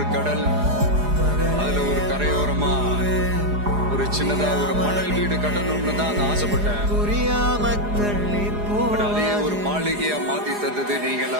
கடல். அதுல ஒரு கரையோரமா ஒரு சின்னதா ஒரு மணல் வீடு கட்டணும்னு தான் நான் ஆசைப்பட்டேன். புரியாம தள்ளி பட் அதே போவாது. ஒரு மாளிகையா மாத்தி தந்தது நீங்க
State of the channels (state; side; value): late; left; 4.9 ms